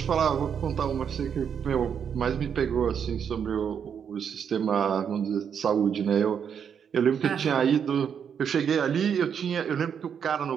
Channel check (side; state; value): left; quieter; 7.6 dB